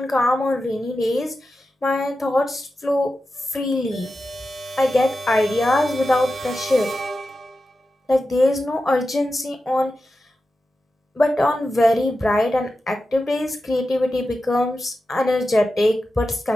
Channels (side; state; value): both; normal; correlation 0.91